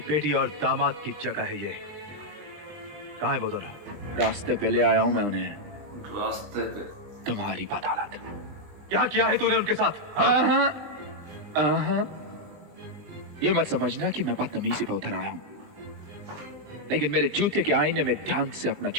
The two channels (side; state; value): left; late; 20 ms